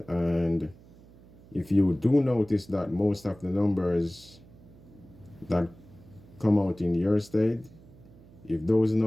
and if you do notice that most of the numbers that come out in your state, if those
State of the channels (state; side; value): noise; right; hum, 23 dB below the sound